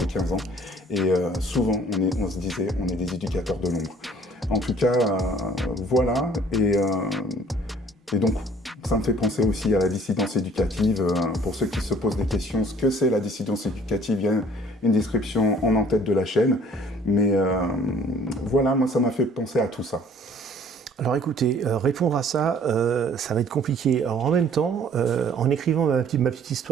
15 ans. Et souvent, on se disait on est des éducateurs de l'ombre. En tout cas, voilà, et donc ça me fait penser aussi à la dissidence éducative. Pour ceux qui se posent des questions, ce que c'est la dissidence éducative, il y a une description en tête de la chaîne. Mais voilà, moi ça m'a fait penser à tout ça. Alors écoutez, répondre à ça, ça va être compliqué. Alors en même temps, en écrivant ma petite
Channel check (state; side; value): normal; both; correlation 0.55